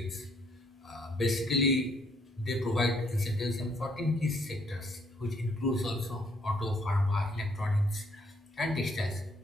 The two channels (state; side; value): normal; both; correlation 0.68